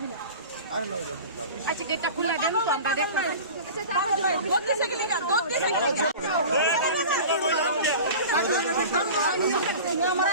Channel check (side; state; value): both; inverted; correlation -0.36